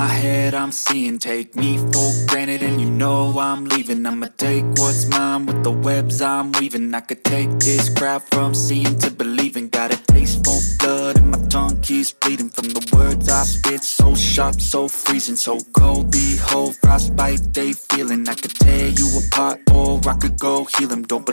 head, I'm seeing. Take me for granted and you know I'm leaving. I'ma take what's mine with the webs I'm weaving. I could take this crowd from seeing to believing. Got a taste for blood and my tongue keeps bleeding from the words I spit. So sharp, so freezing, so cold. Behold, frostbite they feeling. I could tear you apart or I could go heal them. Don't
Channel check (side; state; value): both; inverted; correlation -1.00